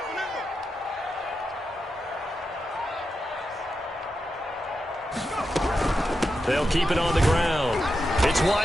They'll keep it on the ground. It's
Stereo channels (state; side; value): normal; both; correlation 0.88